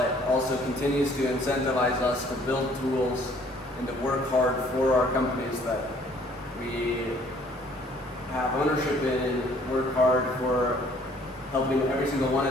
also continues to incentivize us to build tools and to work hard for our companies that we have ownership in, and work hard for helping every single one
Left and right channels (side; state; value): both; normal; correlation 0.58